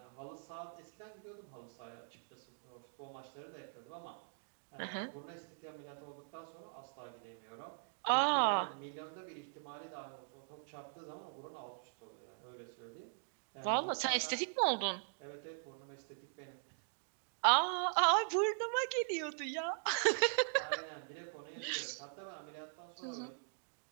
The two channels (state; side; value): silent; left; digital silence